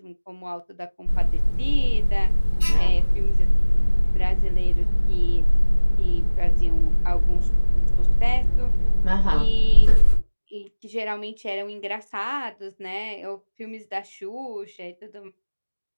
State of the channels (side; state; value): both; inverted; correlation -1.00